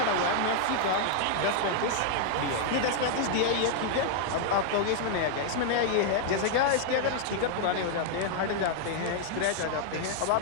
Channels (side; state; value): both; different; correlation -0.01